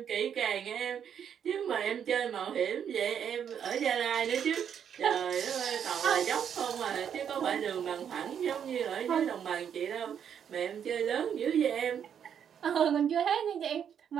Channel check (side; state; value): left; quieter; 8.4 dB